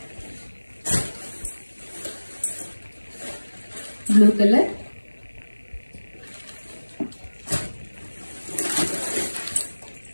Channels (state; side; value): inverted; both; correlation -1.00